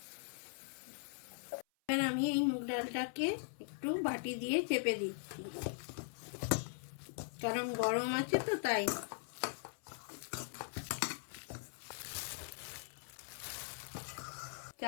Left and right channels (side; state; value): right; silent; 51 dB below the other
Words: এবার আমি এই মুগ ডালটাকে একটু বাটি দিয়ে চেপে দিচ্ছি, কারণ গরম আছে তো তাই।